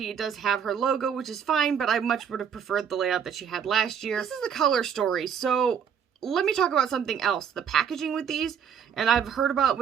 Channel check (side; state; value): left; quieter; 7.8 dB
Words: It does have her logo, which is fine, but I much would have preferred the layout that she had last year. This is the color story, so let me talk about something else. The packaging with these, and I've heard about